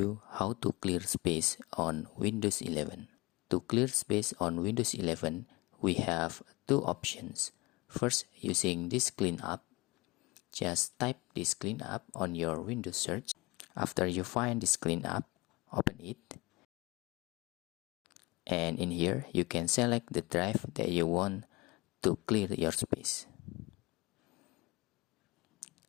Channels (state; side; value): quieter; right; 23.7 dB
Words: how to clear space on Windows 11. To clear space on Windows 11, we have two options. First, using this cleanup. Just type this cleanup on your Windows search. After you find this cleanup, open it. And in here, you can select the drive that you want to clear your space.